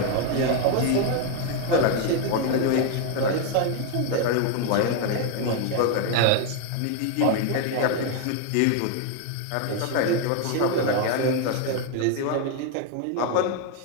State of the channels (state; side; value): different; both; correlation 0.01